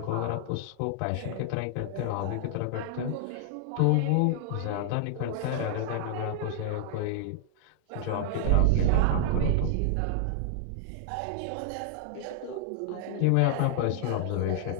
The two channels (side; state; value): both; different; correlation -0.01